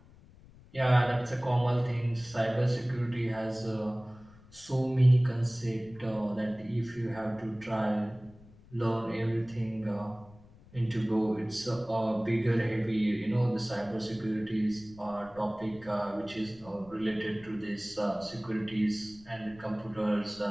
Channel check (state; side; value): noise; left; rumble, 23 dB below the sound